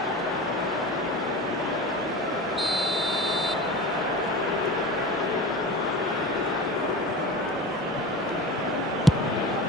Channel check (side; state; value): both; normal; correlation 0.32